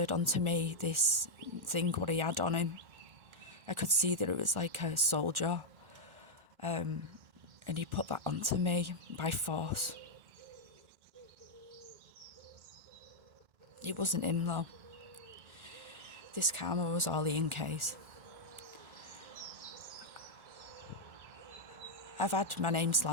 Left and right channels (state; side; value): late; left; 1.4 ms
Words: onto me this thing what he had on him. I could see that it was like a soldier, and he put that onto me by force. It wasn't him though. This karma was all Ian K's. I've had my name